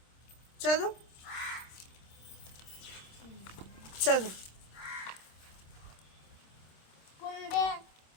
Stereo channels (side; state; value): right; late; 26 ms